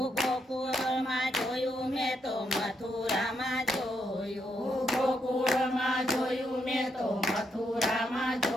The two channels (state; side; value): normal; both; correlation 0.79